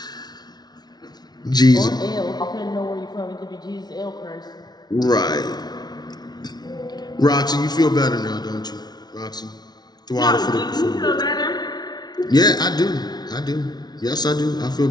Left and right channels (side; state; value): right; late; 0.19 ms